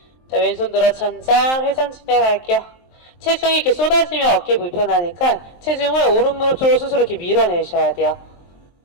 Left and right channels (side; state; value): right; late; 23 ms